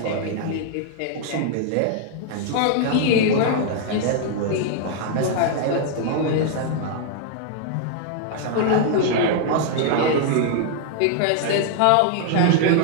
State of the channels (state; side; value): different; both; correlation 0.00